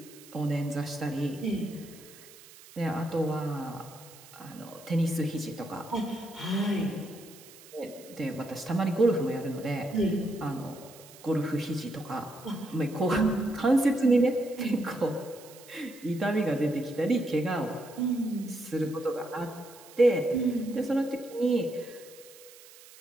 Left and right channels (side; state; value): right; noise; hiss, 20 dB below the sound